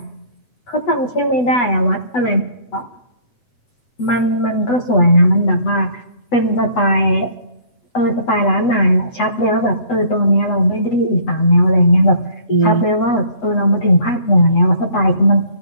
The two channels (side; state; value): right; late; 8.1 ms